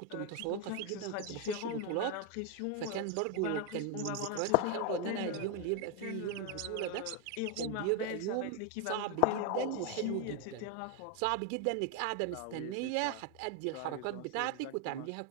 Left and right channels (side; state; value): both; different; correlation 0.01